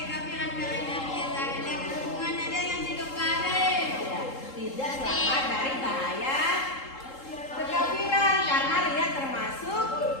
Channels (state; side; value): late; right; 3.8 ms